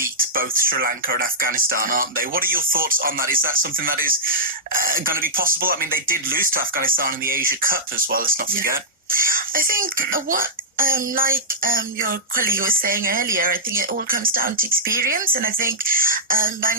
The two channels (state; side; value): normal; both; correlation -0.12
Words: both Sri Lanka and Afghanistan, aren't they? What are your thoughts on that? Is that something that is going to be possible? I mean, they did lose to Afghanistan in the Asia Cup as well, let's not forget. I think what Like your colleague was saying earlier, I think it all comes down to experience, and I think